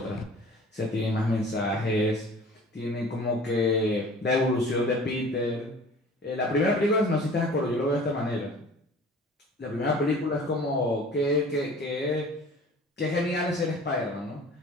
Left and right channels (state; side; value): normal; both; correlation 0.45